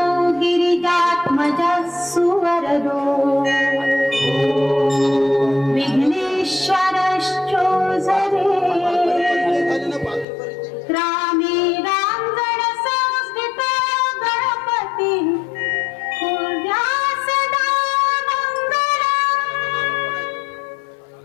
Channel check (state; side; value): drops out; right; at 10.2 s